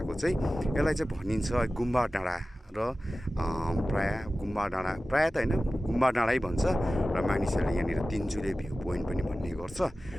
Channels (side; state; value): both; normal; correlation 0.96